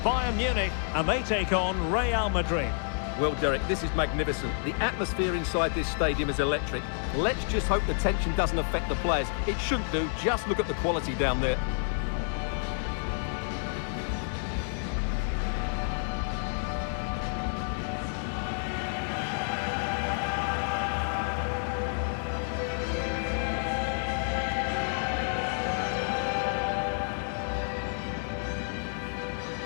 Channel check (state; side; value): silent; right; 58 dB below the other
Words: Bayern Munich and they take on Real Madrid. Well, Derek, this is magnificent. The atmosphere inside this stadium is electric. Let's just hope the tension doesn't affect the players. It shouldn't do. Just look at the quality down there.